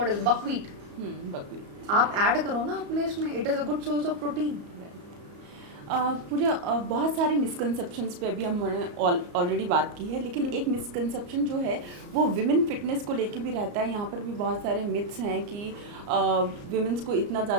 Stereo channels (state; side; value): late; left; 34 ms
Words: इज बकव्हीट, बकव्हीट आप ऐड करो ना अपने इसमें, it is a good source of protein. Pooja बहुत सारे मिसकंसेप्शंस पे अभी हमने ऑलरेडी बात की है, लेकिन एक मिसकंसेप्शन जो है वो विमेन फिटनेस को लेके भी रहता है। यहाँ पर भी बहुत सारे मिथ्स हैं कि विमेंस को इतना